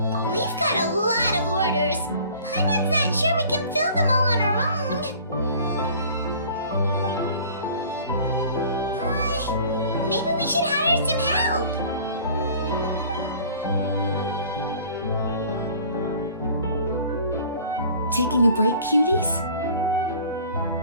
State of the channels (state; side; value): inverted; both; correlation -0.48